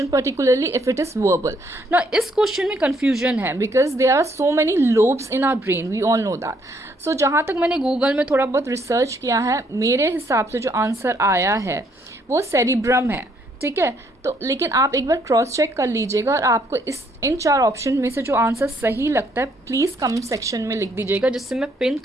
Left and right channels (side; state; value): both; normal; correlation 0.69